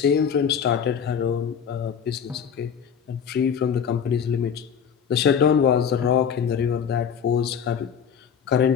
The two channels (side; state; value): right; quieter; 7.4 dB